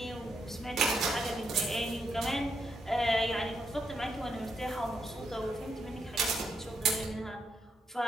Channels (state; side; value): normal; both; correlation 0.80